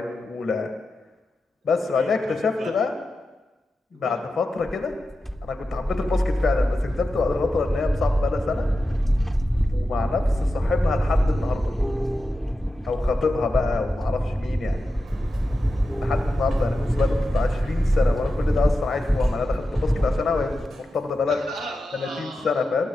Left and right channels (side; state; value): both; normal; correlation 0.91